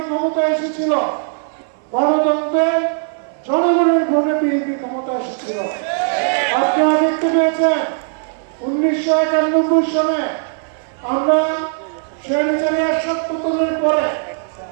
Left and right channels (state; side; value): silent; left; 57 dB below the other